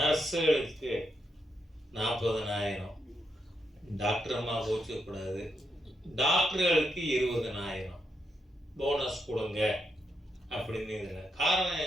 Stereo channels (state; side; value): normal; both; correlation 0.82